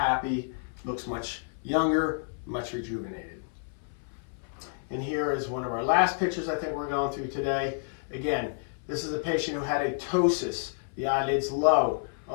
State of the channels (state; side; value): silent; right; 58 dB below the other